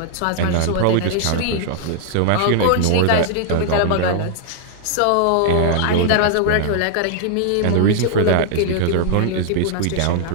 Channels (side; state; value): both; different; correlation 0.00